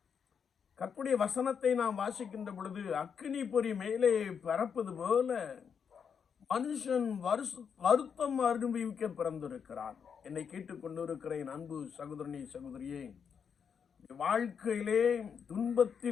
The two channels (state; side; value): quieter; right; 6.9 dB